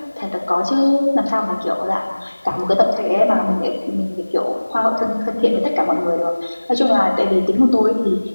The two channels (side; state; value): both; inverted; correlation -1.00